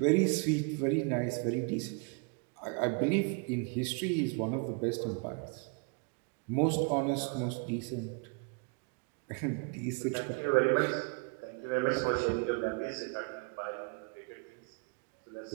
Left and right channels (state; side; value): quieter; left; 35.7 dB